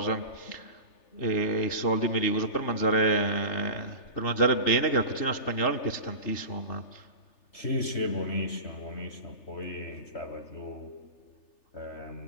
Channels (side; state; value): right; late; 3.4 ms